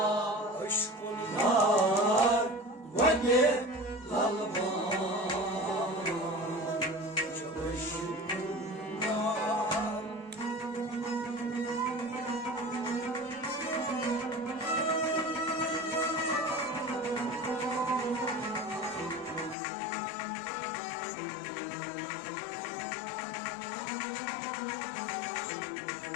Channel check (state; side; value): drops out; right; at 19.6 s